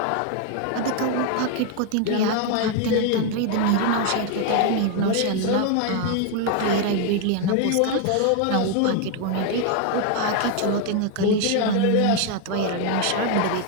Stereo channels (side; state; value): both; different; correlation 0.01